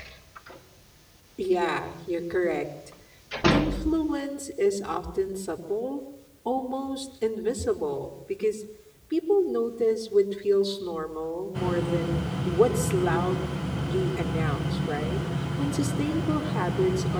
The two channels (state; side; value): identical; both; correlation 1.00